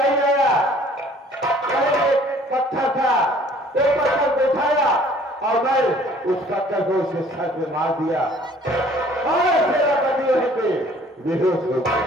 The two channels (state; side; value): normal; both; correlation 0.55